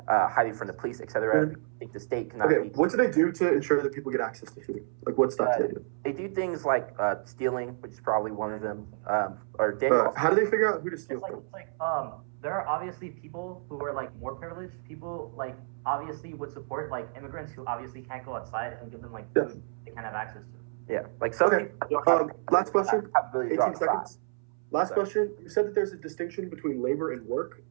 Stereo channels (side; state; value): left; silent; 58 dB below the other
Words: hiding from the police, etc. I think the state cannot. Okay, what do they do to ensure that people get access to food? Like what stuff do they do? They do things like stealing, which is probably one of them. How do they figure out who to steal from? There are obviously people who are like more privileged. People like obviously would support like immigrants who obviously can't go outside and give them like food they can't have access to. Yeah, like some people. Last question. 18 seconds. Last question. You said that there's a distinction between labor and work.